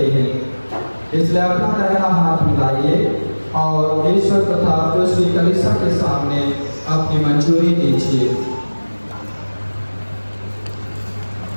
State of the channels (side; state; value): both; inverted; correlation -1.00